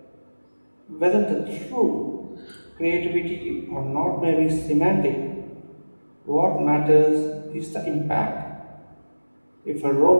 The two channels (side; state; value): both; inverted; correlation -1.00